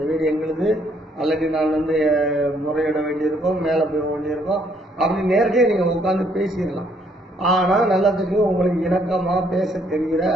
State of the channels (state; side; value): normal; both; correlation 0.67